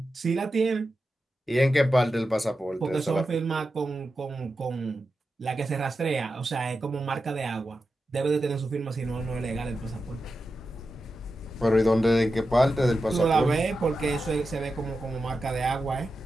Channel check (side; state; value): both; normal; correlation 0.90